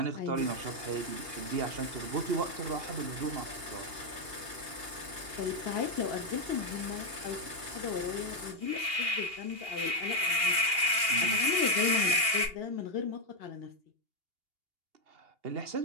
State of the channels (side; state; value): left; late; 2.8 ms